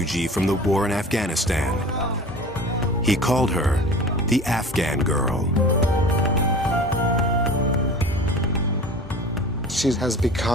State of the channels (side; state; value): both; normal; correlation 0.38